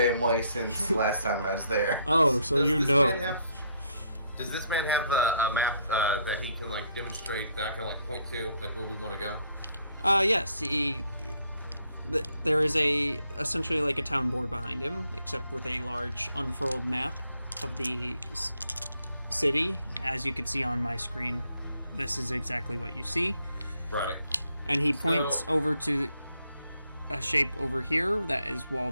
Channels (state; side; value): inverted; both; correlation -0.71